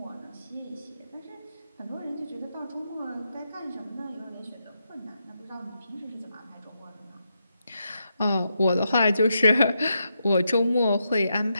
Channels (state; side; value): inverted; both; correlation -0.84